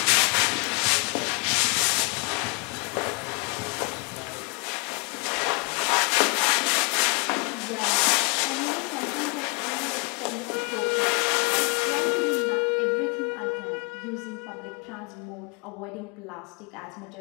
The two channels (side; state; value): right; quieter; 33.3 dB